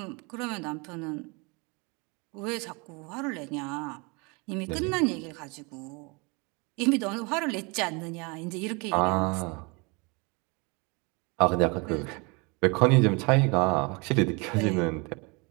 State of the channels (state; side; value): quieter; left; 29.5 dB